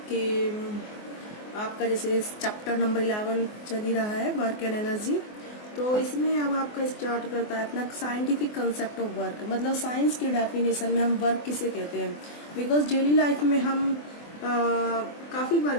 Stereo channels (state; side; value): late; right; 24 ms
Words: कि आपका जैसे चैप्टर नंबर 11 चल ही रहा है वर्क एंड एनर्जी। तो इसमें अब आपका स्टार्ट करता है अपना साइंटिफिक कंसेप्ट ऑफ वर्क, मतलब साइंस की डेफिनेशन में हम वर्क किसे कहते हैं। बिकॉज डेली लाइफ में हम काफ़ी